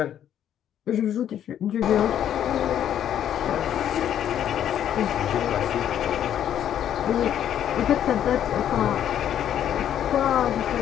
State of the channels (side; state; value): right; quieter; 10.2 dB